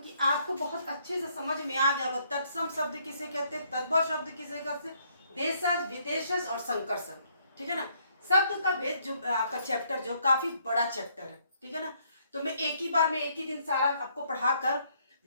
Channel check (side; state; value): both; inverted; correlation -0.69